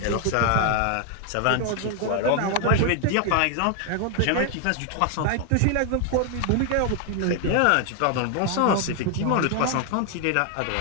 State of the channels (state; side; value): different; both; correlation 0.00